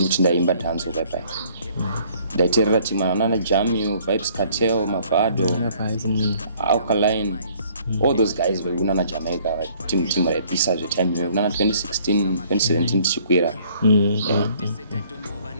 ndaimba dhanzo bye ndaiteerera timana jamming Vibes Cartel Mavado Alkaline all those guys vakunana Jamaica timu raipisa zvetime kunana 2016 2017 tichikwira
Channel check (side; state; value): both; inverted; correlation -0.60